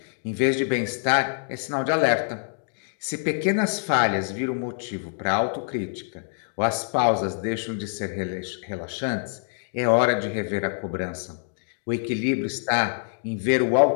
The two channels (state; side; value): silent; right; digital silence